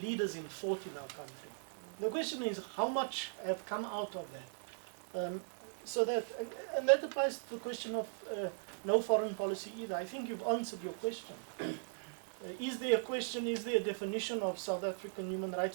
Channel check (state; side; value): silent; left; digital silence